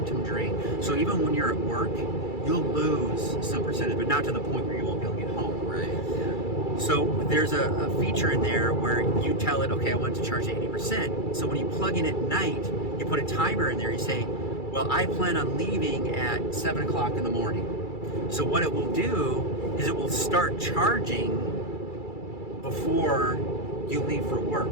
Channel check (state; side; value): late; right; 2.3 ms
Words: drain. So even when you're at work, you'll lose some percentage, but not to the point where you won't be able to get home. Right. Yeah. So there's a feature in there where you tell it, okay, I want to charge 80%. So when you plug in at night, you put a timer in there. You say, well, I plan on leaving at 7 o'clock in the morning. So what it will do is it will start charging before you leave for